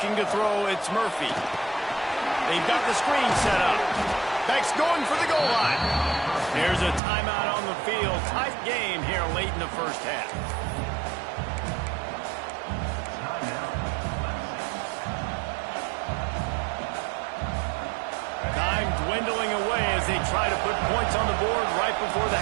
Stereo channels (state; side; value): drops out; left; at 7.0 s